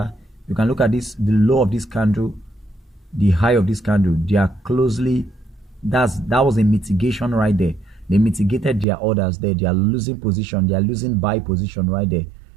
You can look at this, the low of this candle, the high of this candle. They are closely, that was a mitigation right there. They mitigated their orders there. They are losing position. They are losing buy position right there.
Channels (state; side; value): drops out; left; at 8.8 s